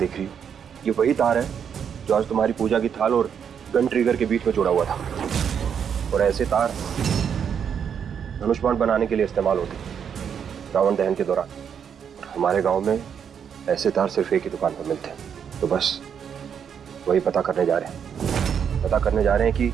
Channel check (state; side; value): quieter; left; 7.7 dB